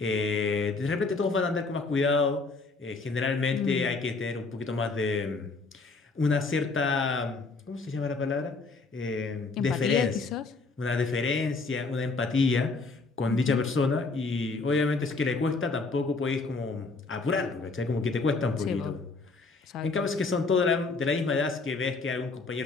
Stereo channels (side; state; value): right; quieter; 3.9 dB